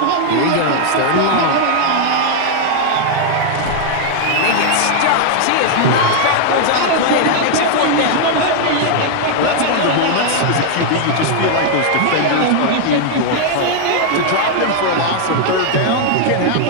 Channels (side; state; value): both; different; correlation 0.00